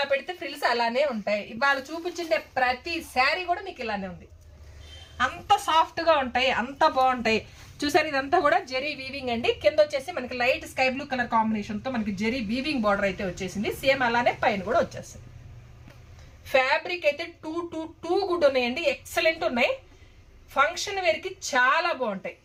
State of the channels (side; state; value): both; identical; correlation 1.00